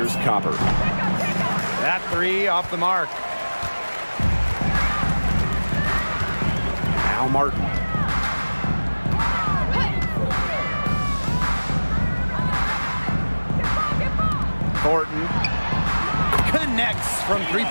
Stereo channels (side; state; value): both; inverted; correlation -1.00